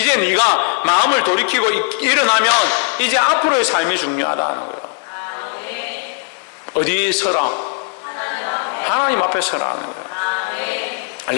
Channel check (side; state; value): right; quieter; 35.3 dB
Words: 네가 마음을 돌이키고 일어나면 이제 앞으로의 삶이 중요하다는 거예요. 어디 서라? 하나님 앞에 서라는 거예요.